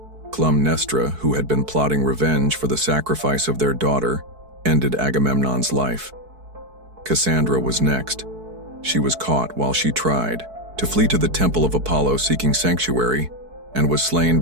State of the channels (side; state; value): left; late; 4.6 ms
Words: Clytemnestra, who had been plotting revenge for the sacrifice of their daughter, ended Agamemnon's life. Cassandra was next. She was caught while she tried to flee to the temple of Apollo seeking sanctuary, and was slain